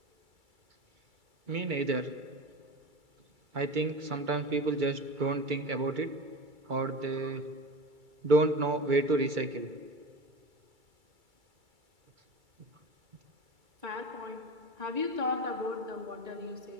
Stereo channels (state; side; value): late; left; 2.3 ms